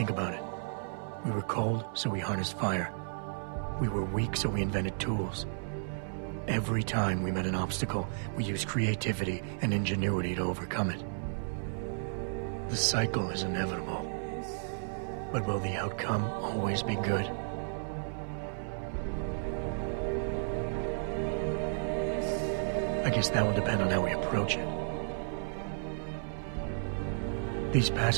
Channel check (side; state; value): left; silent; 56 dB below the other